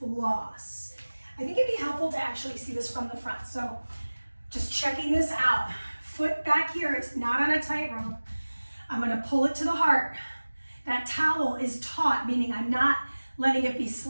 I think it'd be helpful to actually see this from the front. So just checking this out. Foot back here, it's not on a tightrope. I'm gonna pull it to the heart. That towel is taut, meaning I'm not letting it be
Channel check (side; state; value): both; inverted; correlation -1.00